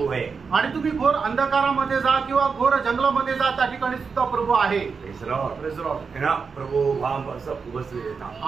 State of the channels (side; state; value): left; quieter; 5.3 dB